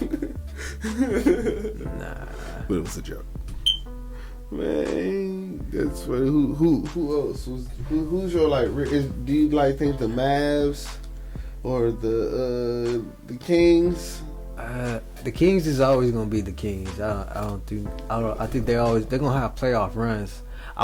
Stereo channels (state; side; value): identical; both; correlation 1.00